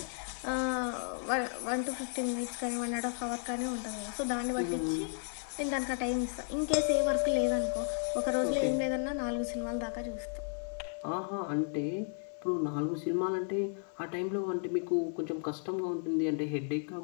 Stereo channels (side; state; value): right; silent; 55 dB below the other